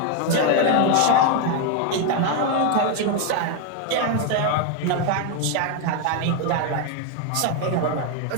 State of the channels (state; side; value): different; both; correlation 0.01